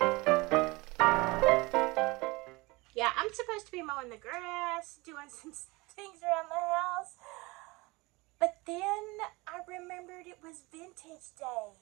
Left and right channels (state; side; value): quieter; left; 23.8 dB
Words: Yeah, I'm supposed to be mowing the grass, doing some things around the house. But then I remembered it was vintage